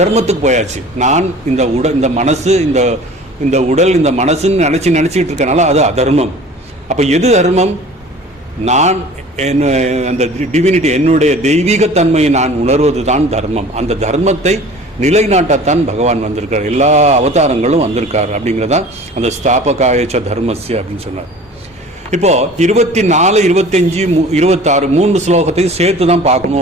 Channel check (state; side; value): normal; both; correlation 0.44